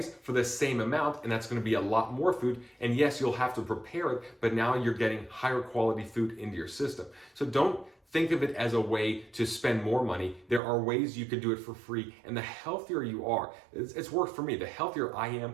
for the same amount, and that's going to be a lot more food. And yes, you'll have to prepare it, but now you're getting higher quality food into your system. So don't think of it as a way to spend more money. There are ways you could do it for free, and the healthier you are, it's worked for me. The healthier I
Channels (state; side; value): drops out; left; at 10.6 s